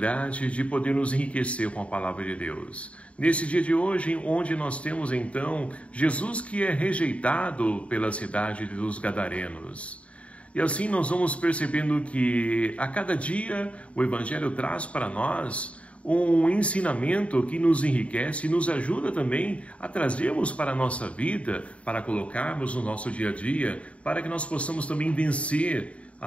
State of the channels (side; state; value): right; late; 0.064 ms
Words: de poder nos enriquecer com a Palavra de Deus. Nesse dia de hoje, onde nós temos então Jesus que é rejeitado pela cidade dos Gadarenos. E assim nós vamos percebendo que a cada dia o Evangelho traz para nós um ensinamento que nos enriquece e nos ajuda também a trazermos para a nossa vida, para colocarmos no nosso dia a dia, para que nós possamos também vencer